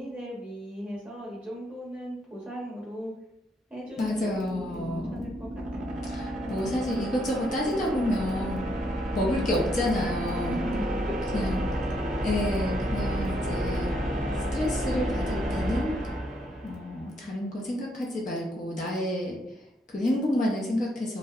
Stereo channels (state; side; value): normal; both; correlation 0.74